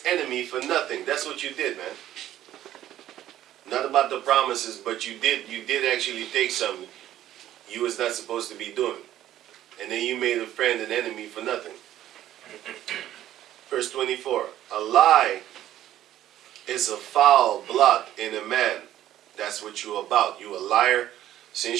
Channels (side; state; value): left; quieter; 12.7 dB